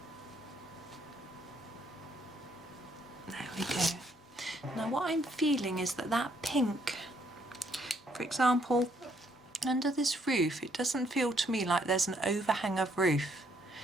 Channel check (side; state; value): both; normal; correlation 0.70